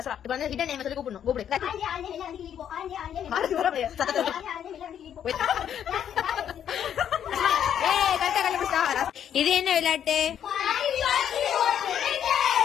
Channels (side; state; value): right; quieter; 9.3 dB